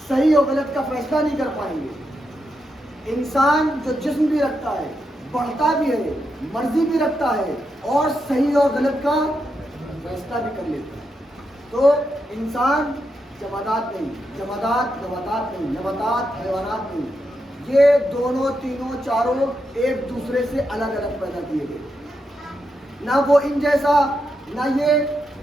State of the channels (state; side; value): normal; both; correlation 0.84